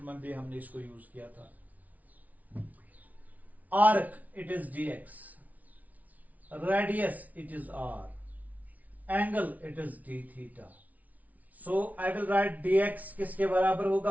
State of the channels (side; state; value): left; late; 0.073 ms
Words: में भी हमने इसको यूज किया था। Arc it is d x, radius it is r, angle it is d theta. So I will write dx किसके बराबर